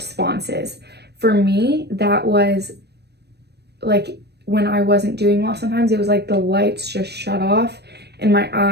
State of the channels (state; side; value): late; left; 0.48 ms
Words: For me, that was like when I wasn't doing well, sometimes it was like the lights just shut off and my